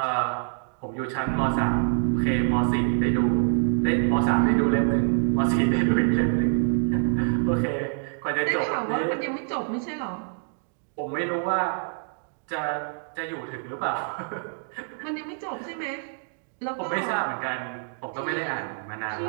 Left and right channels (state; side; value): silent; left; digital silence